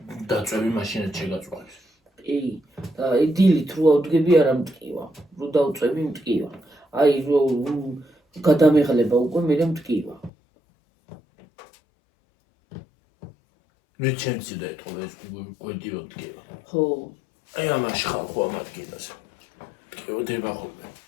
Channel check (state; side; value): drops out; right; at 10.3 s